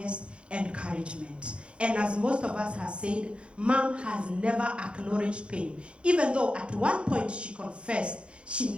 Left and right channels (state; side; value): late; left; 0.058 ms